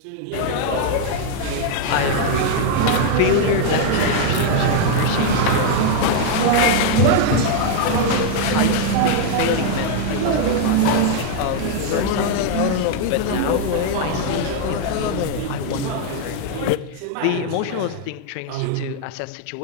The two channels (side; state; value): both; different; correlation 0.00